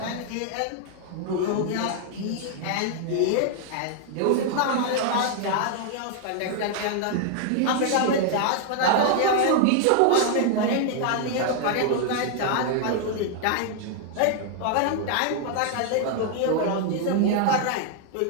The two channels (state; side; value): different; both; correlation 0.00